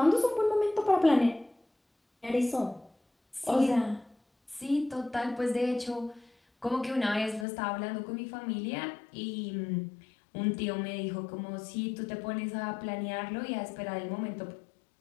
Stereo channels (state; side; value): drops out; right; at 7.5 s